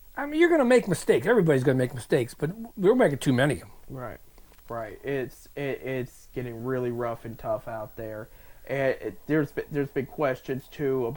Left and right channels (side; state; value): both; identical; correlation 1.00